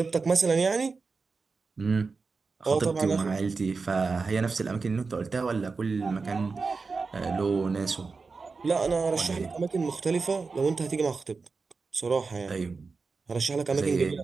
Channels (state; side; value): quieter; left; 4.4 dB